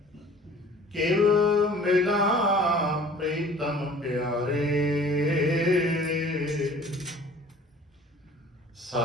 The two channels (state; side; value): normal; both; correlation 0.49